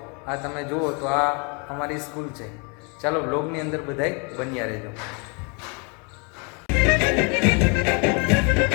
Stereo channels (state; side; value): quieter; right; 33.8 dB